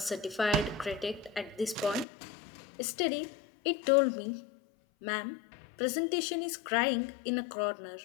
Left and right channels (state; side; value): drops out; right; at 2.1 s